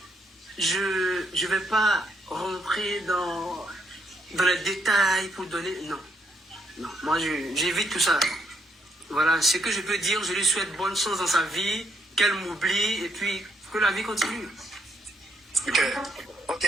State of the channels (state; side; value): normal; both; correlation 0.74